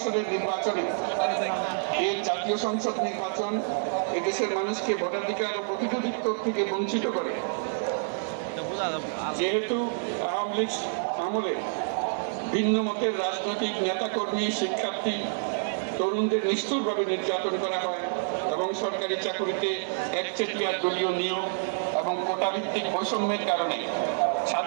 নির্বাচনে এই জাতীয় সংসদ নির্বাচন এদেশের মানুষকে ভোটাধিকার ও প্রতিনিধিত্ব থেকে বঞ্চিত করে। যেহেতু আওয়ামী লীগ আমলে ভিন্ন মতের রাজনৈতিক নেতাকর্মী, শিক্ষার্থী, তরুণদের নিষ্ঠুরভাবে নির্যাতন করা হয় এবং সরকারি চাকুরিতে একচেটিয়া দলীয় নিয়োগ এবং কোটাভিত্তিক বৈষম্যের কারণে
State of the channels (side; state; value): left; silent; digital silence